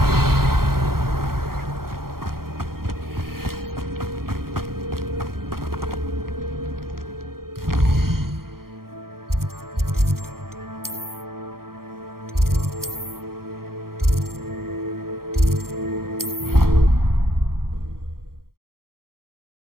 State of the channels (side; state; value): left; late; 0.93 ms